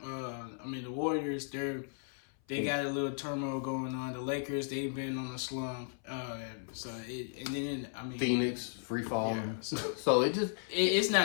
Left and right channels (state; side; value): silent; right; 54 dB below the other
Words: I mean, the Warriors, they got a little turmoil going on. The Lakers, they've been on a slump. Phoenix free fall. Yeah, so it's